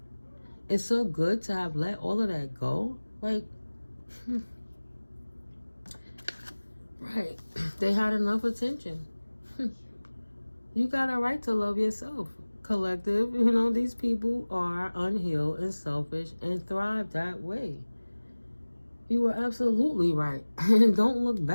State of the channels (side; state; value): both; inverted; correlation -1.00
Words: It's so good to have let all of that go. Like, right. They had enough attention. You got a right to love yourself, collective. You know, these people are unhealed and selfish and thrive that way. You were absolutely right. And don't look